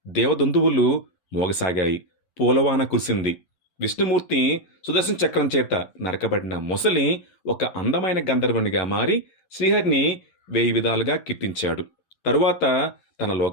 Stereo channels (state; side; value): late; right; 11 ms